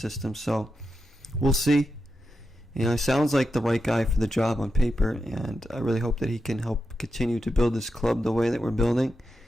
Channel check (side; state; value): both; normal; correlation 0.88